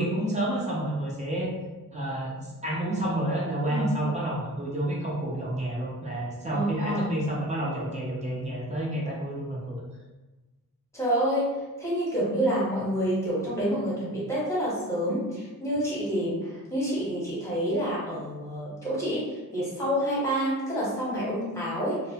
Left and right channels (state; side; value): normal; both; correlation 0.38